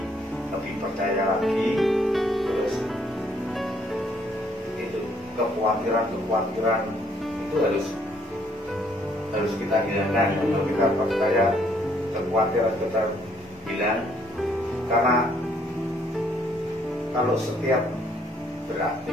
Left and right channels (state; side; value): normal; both; correlation 0.66